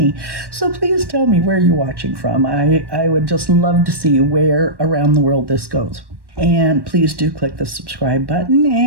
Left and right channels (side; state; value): left; late; 1.1 ms